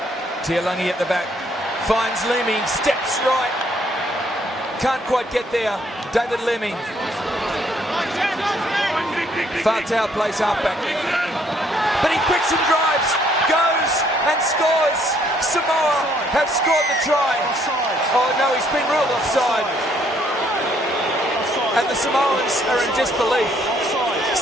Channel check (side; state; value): both; normal; correlation 0.67